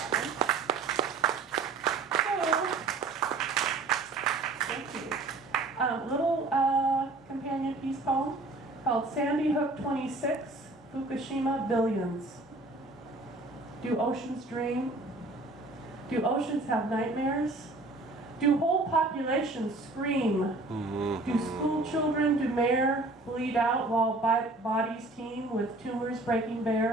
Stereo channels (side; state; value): left; quieter; 3.1 dB